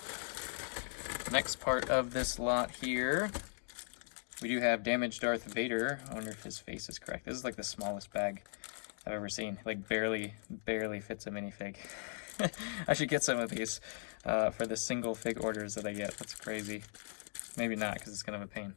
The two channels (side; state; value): right; silent; digital silence